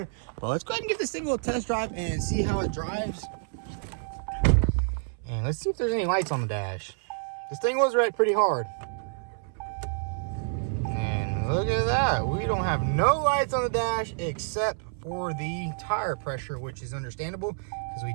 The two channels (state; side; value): silent; left; 59 dB below the other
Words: But let's go ahead and give this thing a little test drive and see how it drives. And let's see if there's any lights on the dash. This thing was red pretty hard. And look at that. We don't have no lights on the dash except for the tire pressure, which is understandable because we